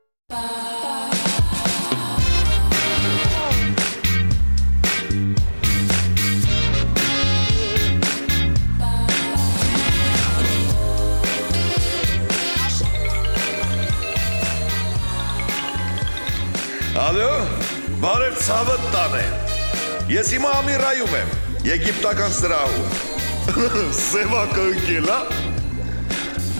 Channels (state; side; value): inverted; both; correlation -1.00